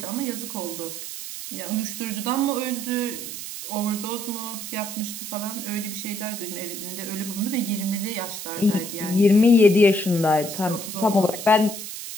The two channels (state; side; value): noise; right; hiss, 8 dB below the sound